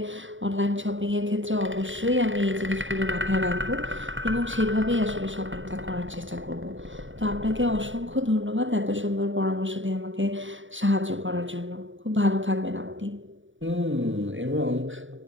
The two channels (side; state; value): left; late; 0.56 ms